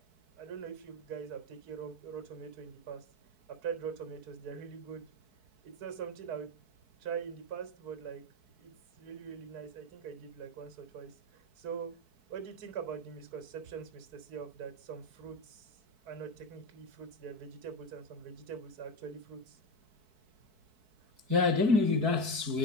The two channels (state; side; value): late; left; 4.6 ms